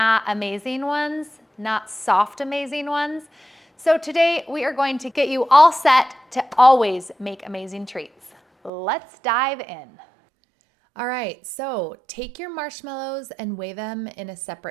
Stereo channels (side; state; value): left; drops out; at 8.7 s